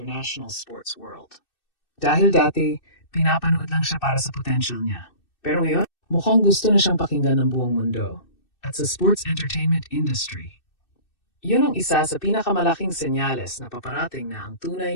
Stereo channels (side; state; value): right; late; 2.6 ms